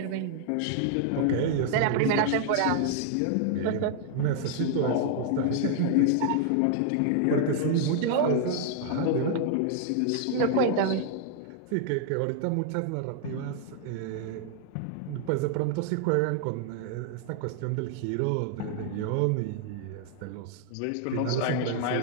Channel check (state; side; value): different; both; correlation 0.00